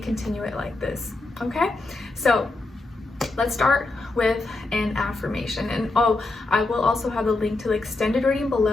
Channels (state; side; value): quieter; right; 3.1 dB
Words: it like this. Okay, so let's start with an affirmation. And I will also have the link to the extended reading